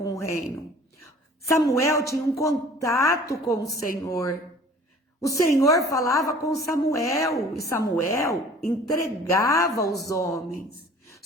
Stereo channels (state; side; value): normal; both; correlation 0.48